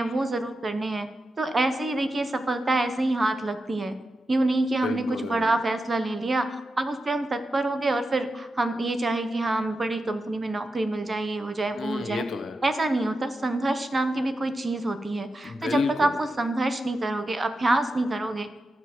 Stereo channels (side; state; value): both; normal; correlation 0.89